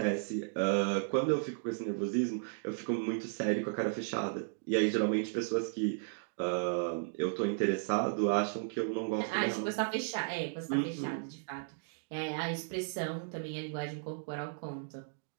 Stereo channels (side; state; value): left; silent; digital silence